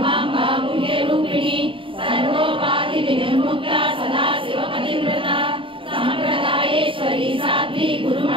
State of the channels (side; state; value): left; late; 0.25 ms